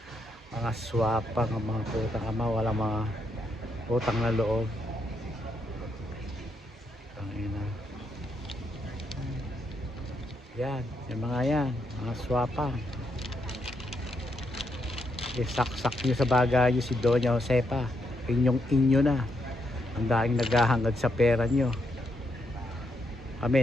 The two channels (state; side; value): normal; both; correlation 0.79